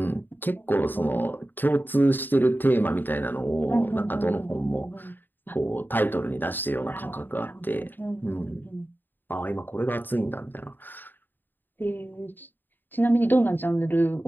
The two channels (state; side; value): late; right; 0.092 ms